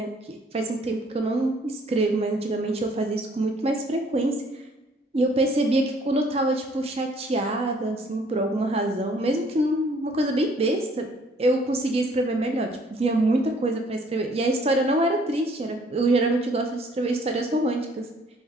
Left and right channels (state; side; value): normal; both; correlation 0.60